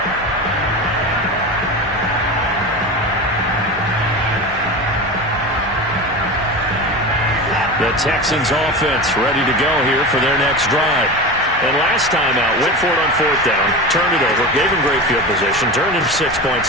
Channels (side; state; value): both; normal; correlation 0.27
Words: The Texans offense ready to go here for their next drive. And last time out, went for it on 4th down, turned it over, gave him great field position, turned into 6 points,